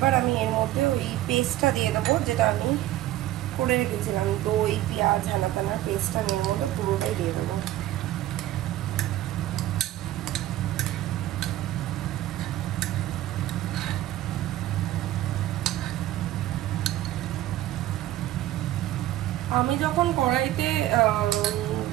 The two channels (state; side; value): quieter; left; 14.7 dB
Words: আমি এর মধ্যে ওই পেস্টটা দিয়ে দেবো, যেটা আমি করে রেখেছিলাম, দই, পেঁয়াজ, হানাতানার পেস্টটা আমি এর মধ্যে পুরোটাই দিয়ে দেবো। আমি যখন কড়াইতে